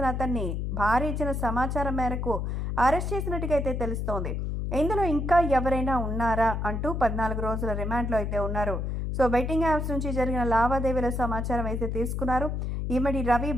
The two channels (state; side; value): noise; left; hum, 2 dB below the sound